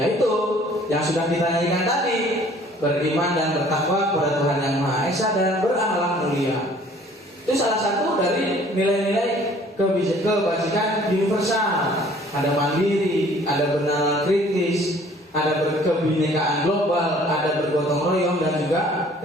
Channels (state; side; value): normal; both; correlation 0.55